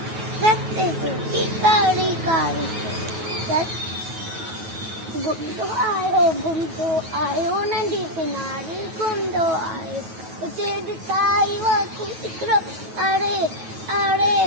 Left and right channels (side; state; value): left; late; 9.3 ms